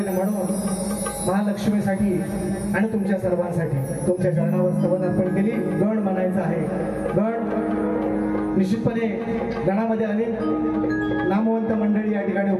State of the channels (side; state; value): both; identical; correlation 1.00